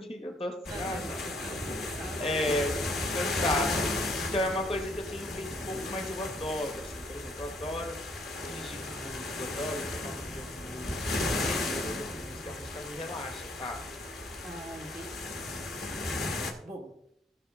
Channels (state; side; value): normal; both; correlation 0.65